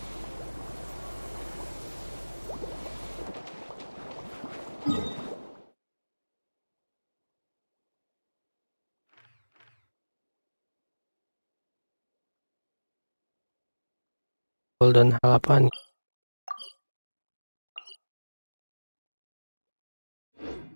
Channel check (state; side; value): inverted; both; correlation -1.00